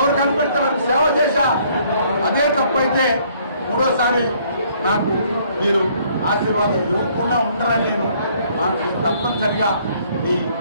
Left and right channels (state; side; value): inverted; both; correlation -0.63